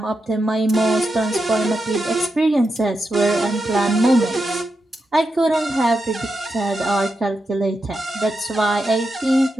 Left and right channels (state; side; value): normal; both; correlation 0.87